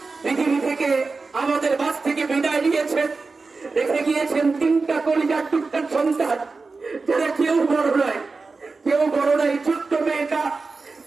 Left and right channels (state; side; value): quieter; left; 4.1 dB